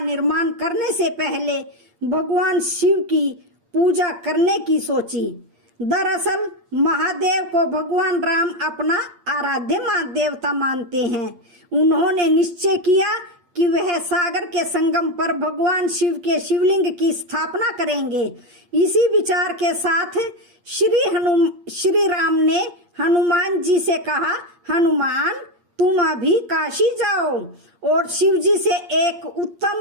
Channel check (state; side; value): late; left; 8.6 ms